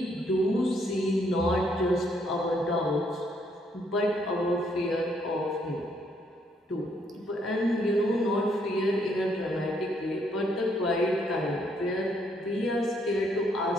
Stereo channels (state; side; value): normal; both; correlation 0.71